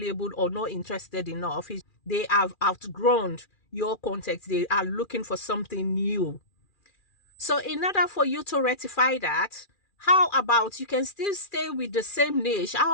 or not interested enough. They have outgrown your content. They are looking for something new. So in order for you to rectify that, how about you can still stay with the same niche?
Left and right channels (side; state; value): right; late; 2.4 ms